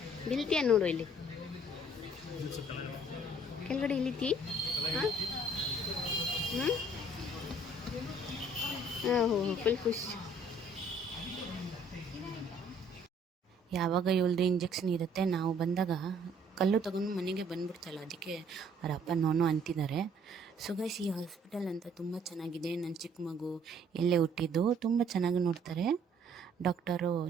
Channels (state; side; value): normal; both; correlation 0.60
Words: ಬಿಲ್ತೀಯ ನೋಡು, ಇಲ್ಲಿ ಕೆಳಗಡೆ ಇಳಿತಿ. ಹಾಂ ಫುಲ್ ಖುಷಿ. ಯಾವಾಗ ಇವಳ್ದು ಇಂಜೆಕ್ಷನ್ ಇರುತ್ತೆ, ನಾವು ಬಂದಾಗ ಕಲ್ಲು ತಗೊಂಡು ಮನೆಗೆ ಬಂದ್ಬಿಡ್ತಲ್ಲ, ಅದಕ್ಕೆ ಅವ್ರ ಅಪ್ಪ ನೋನು ಅಂತಿದ್ದಾರೆ. ಸೊ ಗೈಸ್, ಈ ಹಾಸ್ಪಿಟಲ್ ಅಂತ ತುಂಬ ಚೆನ್ನಾಗಿದೆ. ನನ್ನ ಚಿಕ್ಕ ಮಗು ಎಲ್ಲೇ ಹುಟ್ಟಿದ್ದು, ತುಂಬ ಚೆನ್ನಾಗಿ ನೋಡ್ತಾರೆ. ಡಾಕ್ಟರು